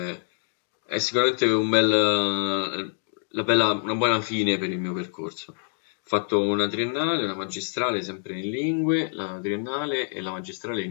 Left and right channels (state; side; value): silent; right; digital silence